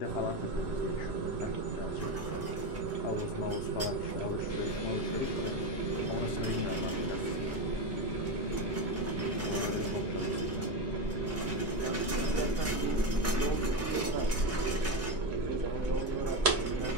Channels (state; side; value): normal; both; correlation 0.15